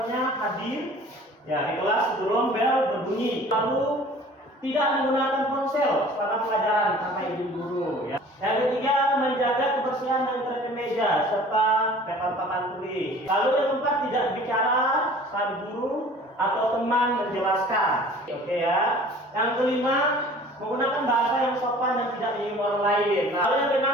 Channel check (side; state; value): both; normal; correlation 0.47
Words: hadir ya di kelas sebelum bel berbunyi. Lalu tidak menggunakan ponsel selama pelajaran sampai ibu guru. Ya. Yang ketiga, menjaga kebersihan dan terapi meja serta papan tulis. Lalu yang keempat, tidak bicara saat guru atau teman menjelaskan. Oke ya. Yang kelima, menggunakan bahasa yang sopan dan tidak menyinggung orang lain. Lalu yang